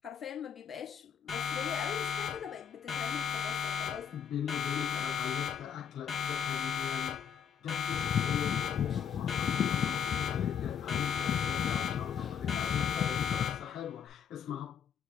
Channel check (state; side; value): quieter; right; 7.9 dB